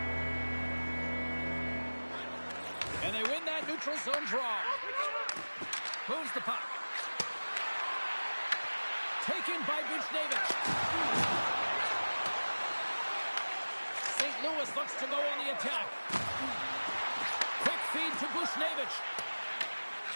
And they win that neutral zone draw. Moves the puck. Taken by Buchnevich. St. Louis looks to go on the attack. Quick feed to Buchnevich.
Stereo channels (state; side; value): inverted; both; correlation -1.00